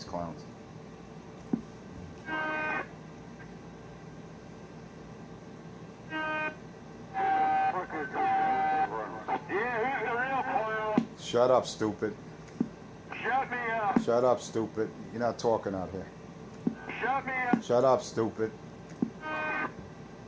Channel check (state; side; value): identical; both; correlation 1.00